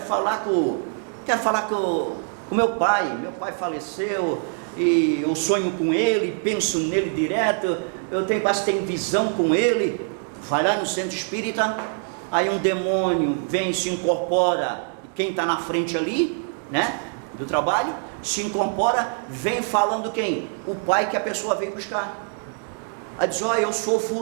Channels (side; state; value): left; silent; 56 dB below the other